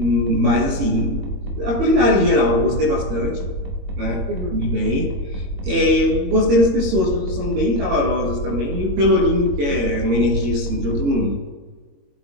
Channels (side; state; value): left; late; 22 ms